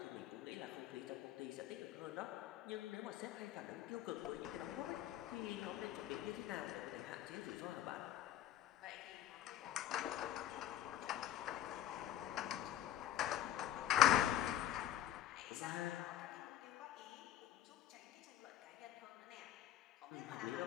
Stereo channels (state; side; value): quieter; right; 12.0 dB